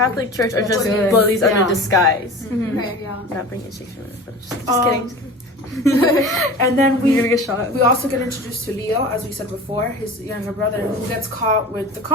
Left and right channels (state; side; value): normal; both; correlation 0.36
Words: Church are That's just what it is. bullies Yeah. under disguise. Okay, yeah. Not bringing Shakespeare, but just Um, kidding. And then You're we gonna get shot. we also get introduced to Leo, as we said before, his younger brother, who gets caught with the